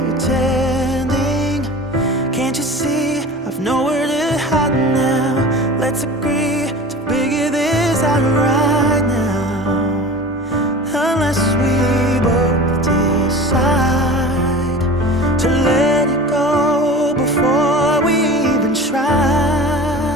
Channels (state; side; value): normal; both; correlation 0.36